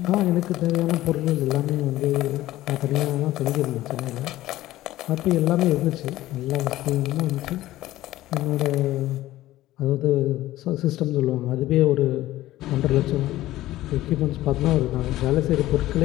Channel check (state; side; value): quieter; right; 15.6 dB